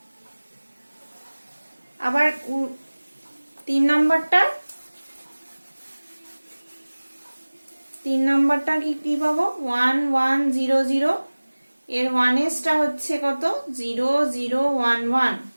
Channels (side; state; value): both; inverted; correlation -1.00